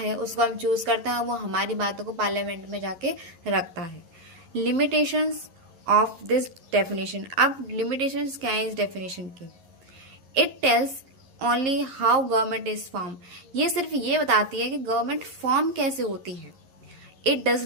उसको हम चूज करते हैं। वो हमारी बातों को पार्लियामेंट में जाके रखता है। Limitations of this definition. अब लिमिटेशंस क्या है इस डेफिनेशन की? It tells only how government is form. ये सिर्फ ये बताती है कि गवर्नमेंट फॉर्म कैसे होती है। इट डज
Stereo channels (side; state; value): left; late; 11 ms